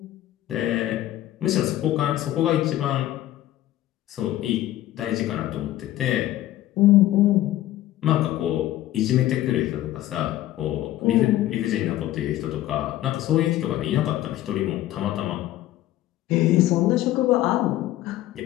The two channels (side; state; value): right; quieter; 14.3 dB